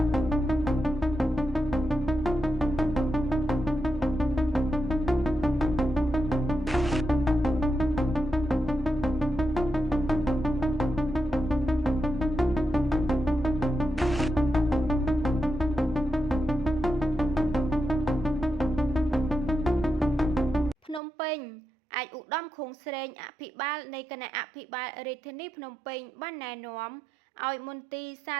ភ្នំពេញអាចឧត្តមខួងស្រេងអភិបាលនៃគណៈអភិបាលរាជធានីភ្នំពេញបានណែនាំឲ្យមន្ទីរសា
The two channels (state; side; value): drops out; left; at 21.0 s